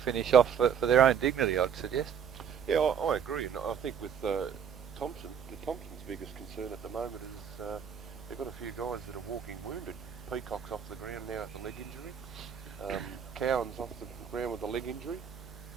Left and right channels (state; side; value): quieter; left; 7.9 dB